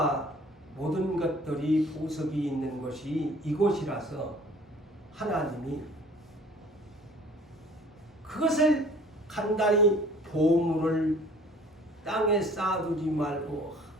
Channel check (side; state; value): both; normal; correlation 0.51